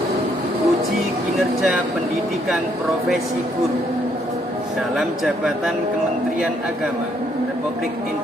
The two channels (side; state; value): both; normal; correlation 0.70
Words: uji kinerja pendidikan profesi guru dalam jabatan Kementerian Agama Republik